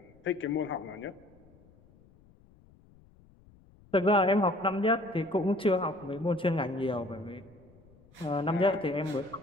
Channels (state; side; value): noise; left; rumble, 27 dB below the sound